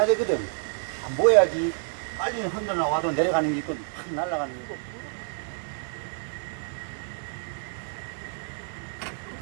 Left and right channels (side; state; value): left; silent; digital silence